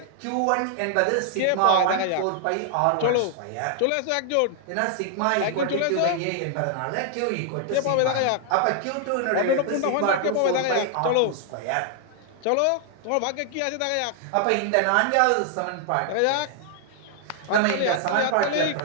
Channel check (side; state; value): both; different; correlation 0.00